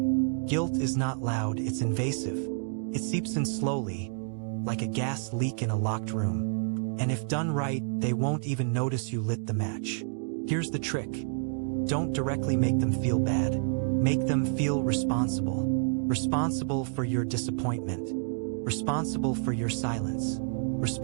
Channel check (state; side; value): silent; left; digital silence